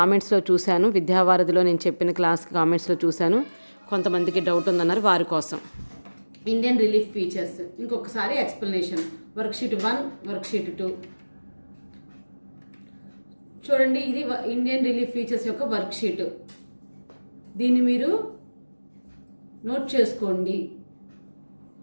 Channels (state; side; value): inverted; both; correlation -1.00